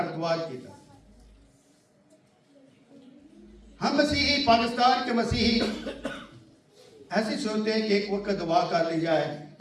द्वार की तरह। हम मसीही, पाकिस्तान के मसीही ऐसे सोचते हैं कि एक वक्त दुआ कर ली जाए,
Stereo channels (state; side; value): identical; both; correlation 1.00